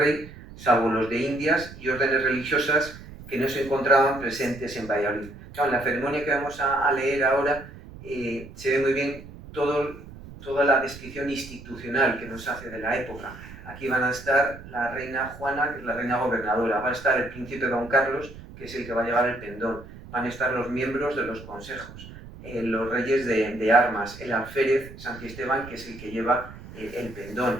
salvo los de Indias y órdenes religiosas que no se encontraban presentes en Valladolid. Claro, en la ceremonia que vamos a leer ahora se ve muy bien toda la descripción institucional que nos hace de la época. Aquí van a estar la reina Juana, que es la reina gobernadora, va a estar el príncipe Don Carlos, que es el que va a llevar el pendón, van a estar los miembros de los consejos, los reyes de armas, el alférez Santiesteban, que es el que lleva el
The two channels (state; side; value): noise; right; rumble, 16 dB below the sound